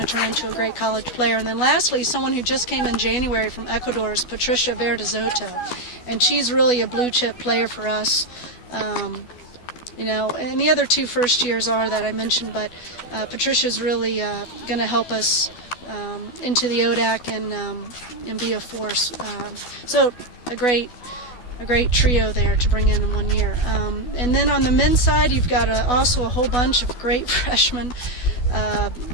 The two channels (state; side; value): late; right; 12 ms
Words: turn into a great college player. And then lastly, someone who just came in January from Ecuador is Patricia Verdezoto, and she's really a blue chip player for us. And the other 2 first years are that I mentioned, but Patricia's really going to help us into the ODAC and be a force. So a great trio there to bring in 1 year. And then on the men's side, you've got also a whole bunch of great freshmen.